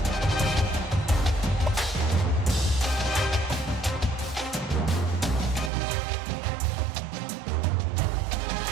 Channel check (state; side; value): drops out; left; at 5.7 s